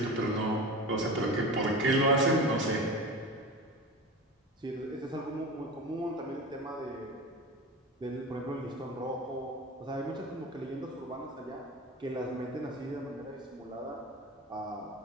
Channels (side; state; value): both; normal; correlation 0.31